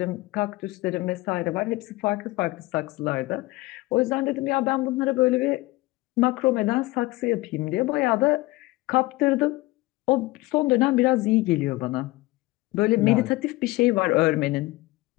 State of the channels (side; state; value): right; quieter; 20.4 dB